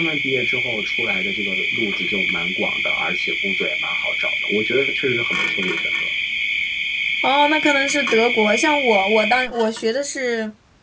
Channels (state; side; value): identical; both; correlation 1.00